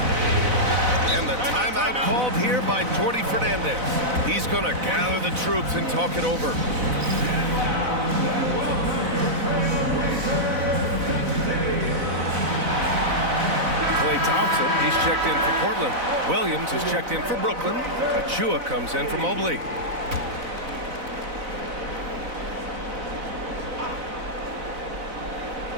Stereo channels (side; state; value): left; late; 4.0 ms